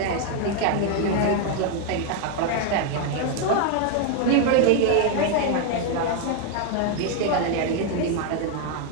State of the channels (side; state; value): both; different; correlation 0.01